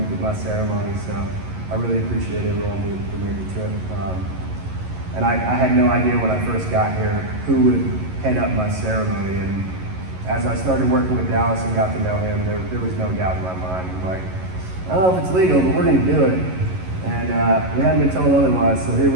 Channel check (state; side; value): late; left; 11 ms